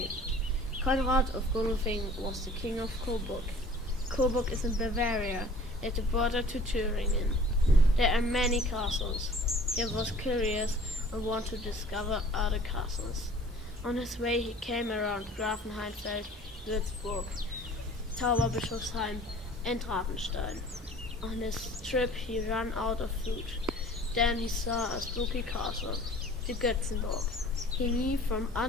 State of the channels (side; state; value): both; normal; correlation 0.48